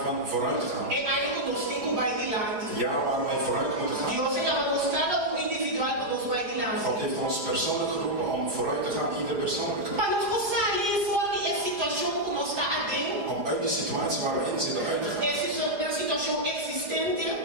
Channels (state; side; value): late; left; 4.9 ms